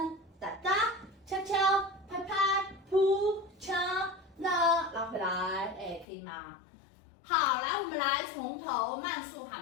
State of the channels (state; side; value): drops out; right; at 6.1 s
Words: 哒哒，敲敲，拍拍，扑掐那，拉回来，哎，可以吗？好，来，我们来从头慢速